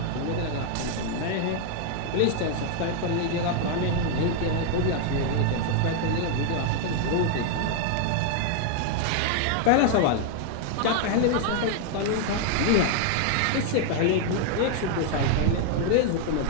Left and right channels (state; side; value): different; both; correlation 0.00